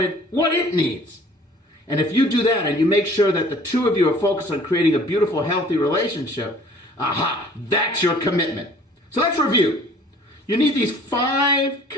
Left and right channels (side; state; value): both; normal; correlation 0.52